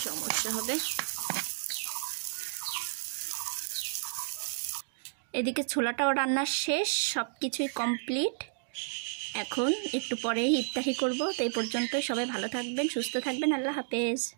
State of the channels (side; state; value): left; silent; digital silence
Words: সমস্যা হবে। এদিকে ছোলাটাও রান্না শেষ, সব কিছুই কমপ্লিট। এখন একটু পরেই ইফতারি করব। তো এই পর্যন্তই, সবাই ভালো থাকবেন, সুস্থ থাকবেন, আল্লাহ হাফেজ।